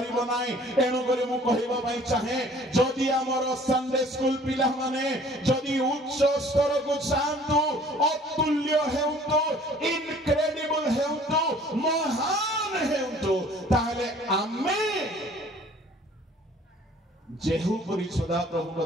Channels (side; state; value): both; normal; correlation 0.53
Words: नाही एनु करे मु कहिबा पई चाहे जदि हमर संडे स्कूल पिला माने जदि उच्च स्तर को चाहंतु अतुल्य हेउतो इनक्रेडिबल हेउतो महान हेउतो ताहले आमे जेहू परि सदा प्रभु का